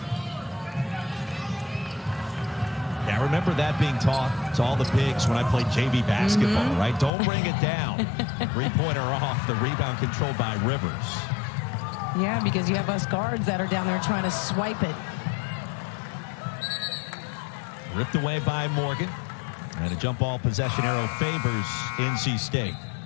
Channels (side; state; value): right; drops out; at 7.1 s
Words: Yeah, I remember that being taught to all the bigs when I played JV basketball, right? Don't bring it down. Three-pointer off. The rebound controlled by Rivers. Yeah, because you have us guards that are down there trying to swipe it. Ripped away by Morgan. And a jump ball possession arrow favors NC State.